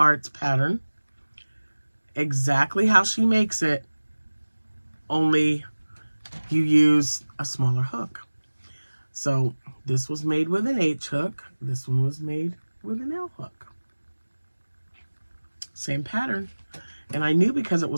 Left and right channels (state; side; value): inverted; both; correlation -1.00